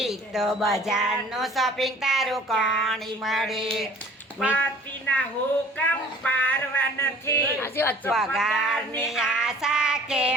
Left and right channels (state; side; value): normal; both; correlation 0.51